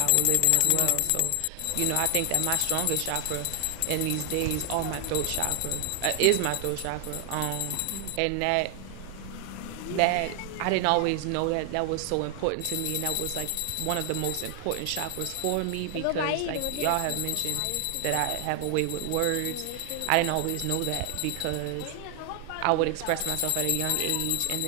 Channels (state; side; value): different; both; correlation 0.00